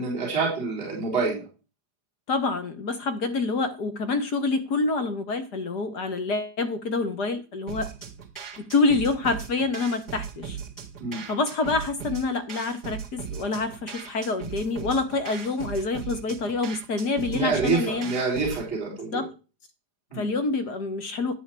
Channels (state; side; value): late; right; 4.9 ms